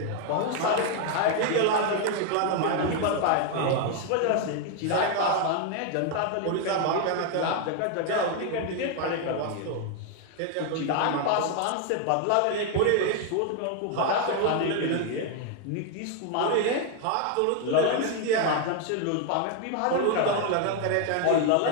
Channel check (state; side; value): different; both; correlation 0.01